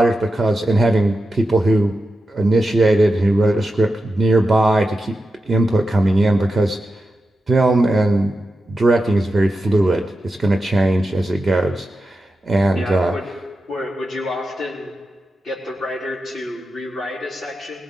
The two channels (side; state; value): both; normal; correlation 0.90